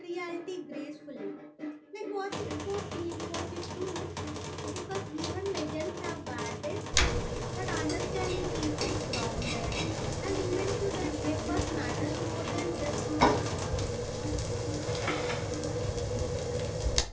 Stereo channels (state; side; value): identical; both; correlation 1.00